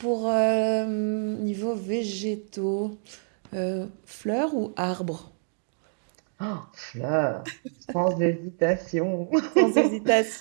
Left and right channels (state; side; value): silent; left; digital silence